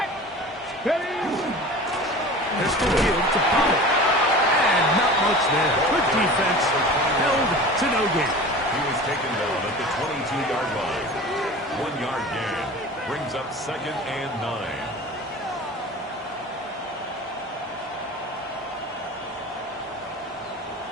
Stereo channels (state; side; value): normal; both; correlation 0.37